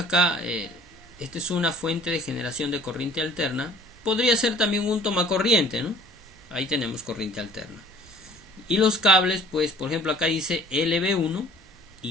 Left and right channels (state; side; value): normal; both; correlation 0.52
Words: esta es una fuente de generación de corriente alterna. Podría ser también un tomacorriente, ¿no? Ahí tenemos corriente alterna. Y los cables, pues, por ejemplo, acá dice LB1